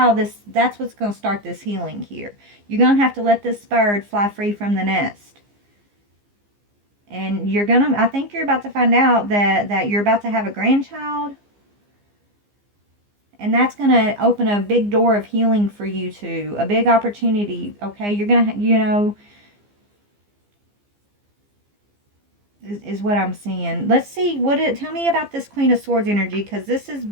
going to start this healing here. You're going to have to let this bird fly free from the nest. And I think you're about to find out that you're about to have a grandchild. And that's going to open a big door of healing for you too. A big opportunity, okay? You're going to, is what I'm seeing. Let's see, tell me about this Queen of Swords energy, because this is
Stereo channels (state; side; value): late; left; 15 ms